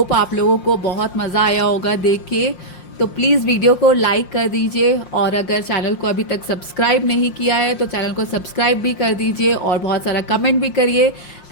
आप लोगों को बहुत मज़ा आया होगा देख के। तो प्लीज़ वीडियो को लाइक कर दीजिए और अगर चैनल को अभी तक सब्सक्राइब नहीं किया है तो चैनल को सब्सक्राइब भी कर दीजिए और बहुत सारा कमेंट भी करिए।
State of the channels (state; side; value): late; right; 5.6 ms